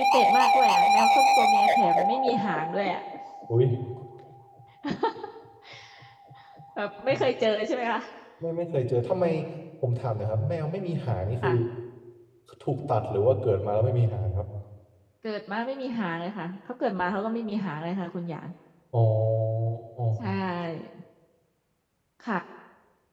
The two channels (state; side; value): identical; both; correlation 1.00